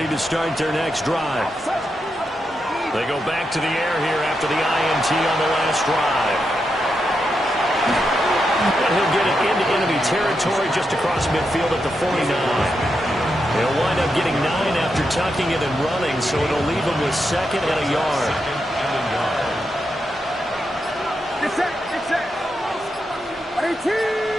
to start their next drive. They go back to the air here after the INT on the last drive. And he'll get it into enemy territory just across midfield at the 49. He'll wind up getting 9 after tucking it and running, so it'll leave him with 2nd and a yard.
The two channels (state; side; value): normal; both; correlation 0.85